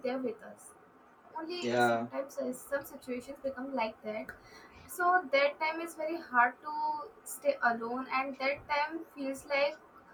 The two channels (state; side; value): identical; both; correlation 1.00